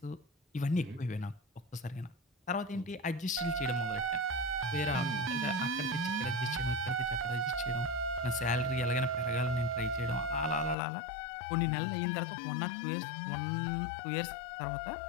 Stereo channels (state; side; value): drops out; right; at 10.8 s